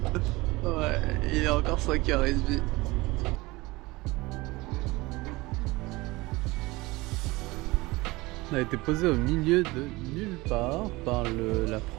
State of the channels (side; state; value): left; quieter; 21.6 dB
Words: Ouais, il est encore 5h30. On a été posé au milieu de nulle part par la